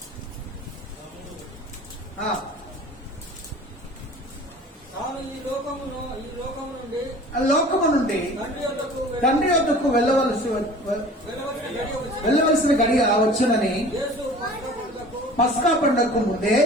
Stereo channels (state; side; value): normal; both; correlation 0.44